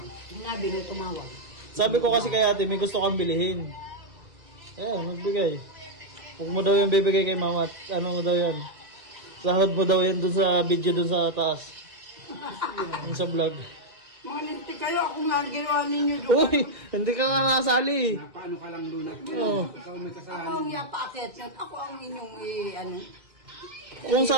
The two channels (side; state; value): left; late; 1.9 ms